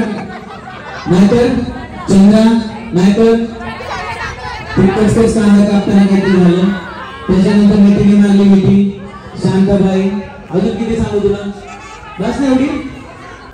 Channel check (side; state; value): both; identical; correlation 1.00